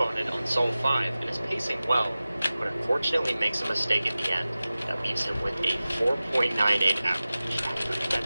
it on solve 5 and is pacing well, but unfortunately makes a mistake at the end that leaves him with a 4.98 average.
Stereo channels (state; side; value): inverted; both; correlation -0.96